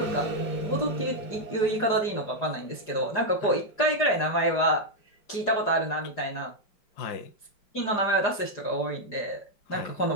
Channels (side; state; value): right; late; 4.9 ms